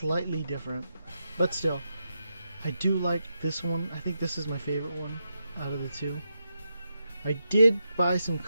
different, but still, I do like this one. I think this is my favorite one out of the 2. I did buy some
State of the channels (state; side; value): inverted; both; correlation -0.86